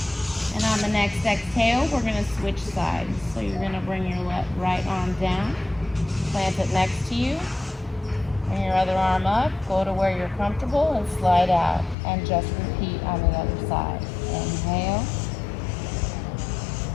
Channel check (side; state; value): right; drops out; at 12.0 s